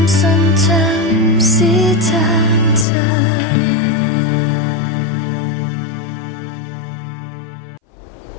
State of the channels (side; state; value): right; drops out; at 2.9 s